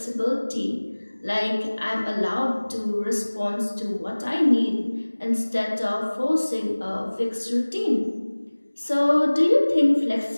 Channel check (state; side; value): inverted; both; correlation -1.00